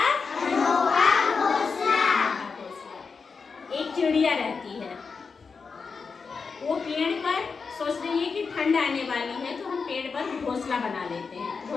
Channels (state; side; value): quieter; right; 5.1 dB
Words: अनोखा घोंसला। एक चिड़िया रहती है, वो पेड़ पर सोच रही है कि ठंड आने वाली है तो हम पेड़ पर घोंसला बना लेते हैं।